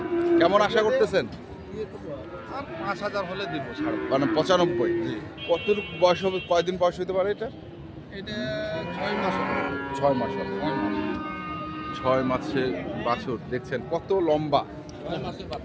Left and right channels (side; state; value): both; identical; correlation 1.00